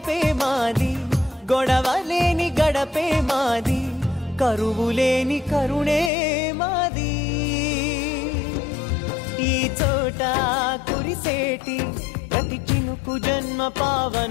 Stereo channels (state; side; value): drops out; right; at 6.1 s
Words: మాది గొడవ లేని గడపే మాది కరువు లేని కరుణే మాది ఈ చోట కురిసేటి ప్రతి చినుకు జన్మ